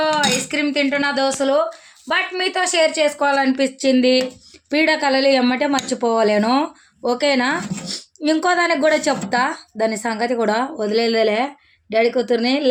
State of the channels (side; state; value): both; identical; correlation 1.00